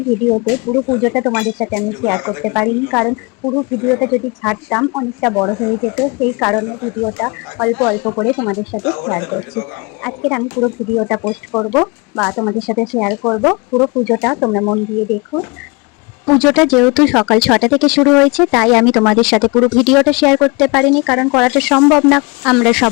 ভিডিওতে পুরো পুজোটা তোমাদের সাথে আমি শেয়ার করতে পারিনি, কারণ পুরো ভিডিওটা যদি ছাড়তাম অনেকটা বড় হয়ে যেত। সেই কারণে ভিডিওটা অল্প অল্প করে তোমাদের সাথে শেয়ার করছি। আজকের আমি পুরো ভিডিওটা পোস্ট করব বা তোমাদের সাথে শেয়ার করব। পুরো পুজোটা তোমরা মন দিয়ে দেখো। পুজোটা যেহেতু সকাল 6টা থেকে শুরু হয়েছে, তাই আমি তোমাদের সাথে পুরো ভিডিওটা শেয়ার করতে পারিনি, কারণ করাটা সম্ভব না। আমরা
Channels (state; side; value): quieter; right; 28.4 dB